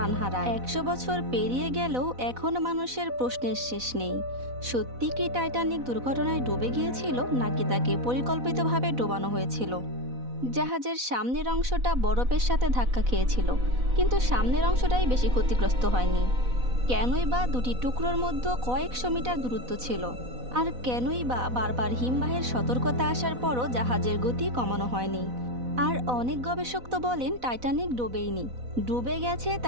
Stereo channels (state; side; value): late; left; 4.0 ms